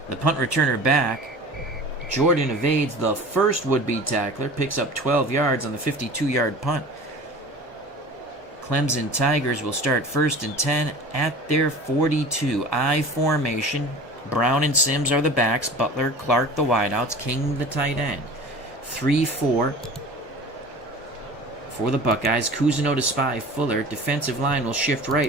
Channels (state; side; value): normal; both; correlation 0.39